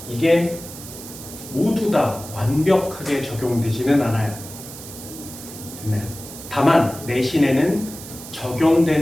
이게 모두 다 완벽하게 적용되지는 않아요. 됐나요? 다만 내신에는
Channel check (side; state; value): right; noise; hiss, 14 dB below the sound